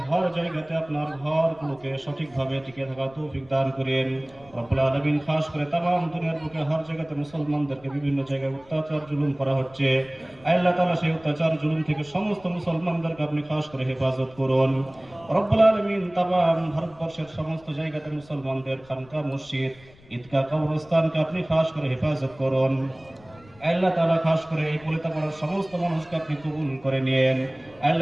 হর জায়গাতে আপনার ঘরগুলোকে সঠিকভাবে টিকে থাকার তৌফিক দান করেন। রব্বুল আলামিন খাস করে তামাম দুনিয়ার বুকে হর জায়গাতে মুসলমানদেরকে বিভিন্ন জায়গায় অত্যাচার জুলুম করা হচ্ছে। আয় আল্লাহ তাআলা সেই অত্যাচার জুলুম থেকে সমস্ত মুসলমানদেরকে আপনি খাস করে হেফাজত করুন। রব্বুল আলামিন তামাম ভারতবর্ষের সমস্ত জায়গাতে মুসলমানদের খানকা মসজিদ ঈদগাহ কবরস্থানকে আপনি খাস করে হেফাজত করুন। আল্লাহ তাআলা খাস করে এই পলিতাপাড়ার সমস্ত মানুষকে আপনি কবুল করে নিয়েন।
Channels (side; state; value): left; noise; rumble, 25 dB below the sound